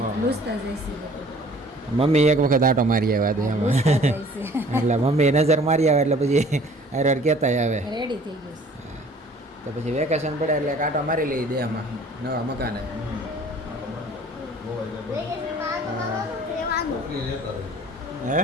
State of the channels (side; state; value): both; normal; correlation 0.52